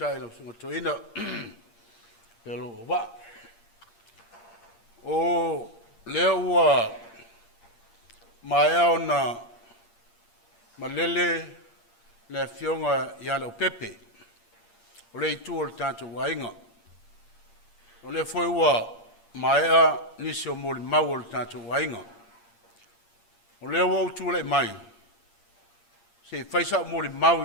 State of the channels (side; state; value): right; late; 8.7 ms